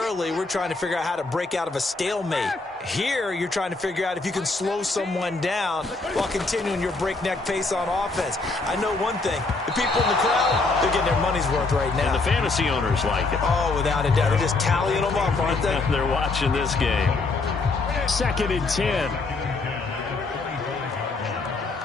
we're trying to figure out how to break out of a stalemate. Here, you're trying to figure out if you can slow someone down while continuing your breakneck pace on offense. I know one thing. The people in the crowd, they're getting their money's worth right now. And the fantasy owners like it. Oh, without a doubt. They're just tallying them up, aren't they? They're watching this game. 2nd and 10.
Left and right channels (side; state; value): right; quieter; 3.6 dB